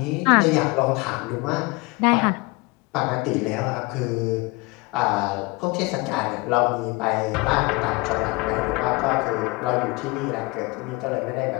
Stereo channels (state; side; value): quieter; right; 25.1 dB